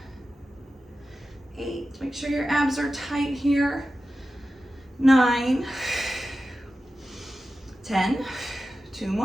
8. Make sure your abs are tight here. 9, 10, 2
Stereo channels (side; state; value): both; normal; correlation 0.93